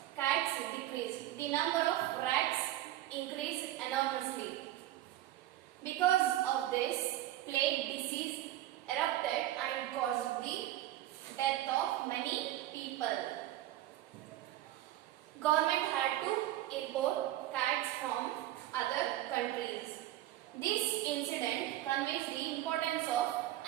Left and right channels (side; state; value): left; quieter; 14.2 dB